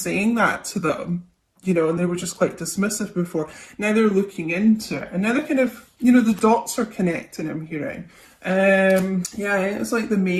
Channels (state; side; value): identical; both; correlation 1.00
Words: that to them, you know, and they were just quite dismissive before. Now they're looking into it, and now they're kind of, you know, the dots are connecting, I'm hearing. Yeah, it's like the